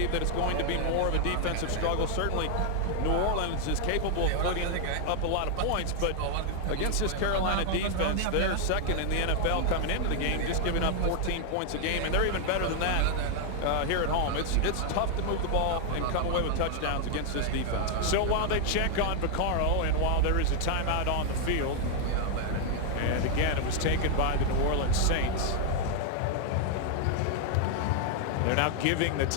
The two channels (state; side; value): different; both; correlation 0.00